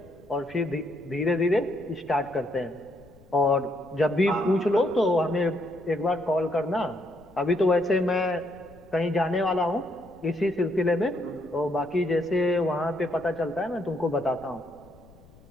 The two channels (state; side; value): noise; left; rumble, 26 dB below the sound